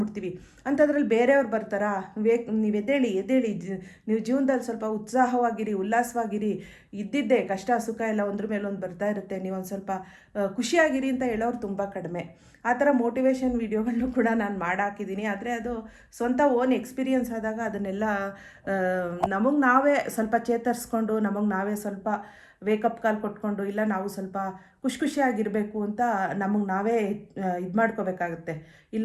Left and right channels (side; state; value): both; identical; correlation 1.00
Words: ಅಂಥದ್ರಲ್ಲಿ ಬೇರೆಯವ್ರು ಬರ್ತಾರಾ, ನೀವು ಎದ್ದೇಳಿ ನೀವು ಜೀವನದಲ್ಲಿ ಸ್ವಲ್ಪ ಉತ್ಸಾಹವಾಗಿರಿ, ಉಲ್ಲಾಸವಾಗಿರಿ, ಇದ್ದಿದ್ದೆ ಕಷ್ಟ ಸುಖ ಎಲ್ಲ ಒಂದ್ರ ಮೇಲೆ ಒಂದು ಬರ್ತಾ ಇರುತ್ತೆ, ನೀವು ಒಂದು ಸ್ವಲ್ಪ ಖುಷಿಯಾಗಿರಿ ಅಂತ ಹೇಳೋರು ತುಂಬ ಕಡಿಮೆ. ಆ ಥರ ಮೋಟಿವೇಶನ್ ವೀಡಿಯೋಗಳನ್ನು ಕೂಡ ನಾನು ಮಾಡಾಕಿದ್ದೀನಿ. ಆದರೆ ಅದು ಸ್ವಂತ ಓನ್ ಎಕ್ಸ್ಪೀರಿಯನ್ಸ್ ಆದಾಗ ಅದನ್ನೆಲ್ಲ ನಮಗೆ ನಾವೇ ಸ್ವಲ್ಪ ಚೇತರಿಸ್ಕೊಂಡು, ನಮಗೆ ನಾವೇ ಸ್ವಲ್ಪ ವೇಕಪ್ ಕಾಲ್ ಕೊಟ್ಕೊಂಡು, ಇಲ್ಲ ನಾವು ಸ್ವಲ್ಪ ಖುಷಿಯಾಗಿರಬೇಕು ಅಂತ ನಮಗೆ ನಾವೇ ಇದು ಮಾಡ್ಕೋಬೇಕಾಗುತ್ತೆ.